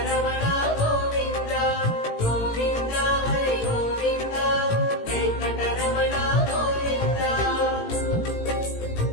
గోవింద గోవింద హరి గోవింద వెంకటరమణ గోవింద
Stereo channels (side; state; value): right; late; 18 ms